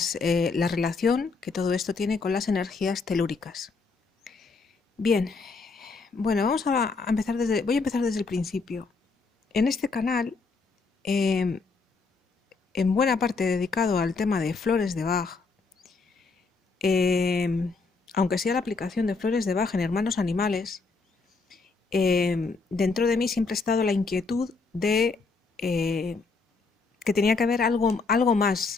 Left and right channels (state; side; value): quieter; right; 4.2 dB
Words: relación que todo esto tiene con las energías telúricas. Bien, bueno, voy a empezar desde el principio. En este canal, en buena parte dedicado al tema de flores de Bach, aunque sea la aplicación de flores de Bach en hermanos animales, dentro de mí siempre ha estado la inquietud de que tenía que haber algo